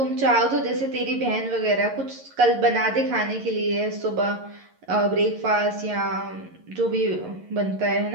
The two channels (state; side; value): late; left; 11 ms